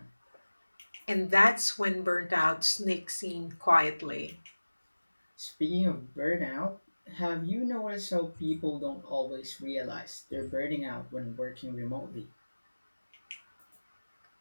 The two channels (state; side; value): inverted; both; correlation -1.00